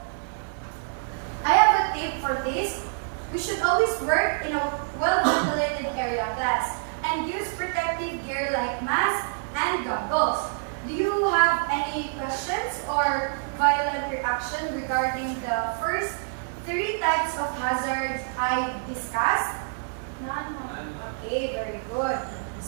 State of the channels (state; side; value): silent; left; digital silence